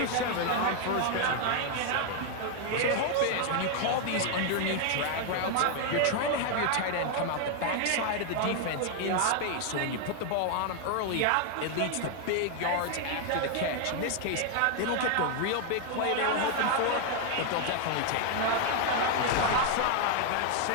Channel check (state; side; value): different; both; correlation 0.00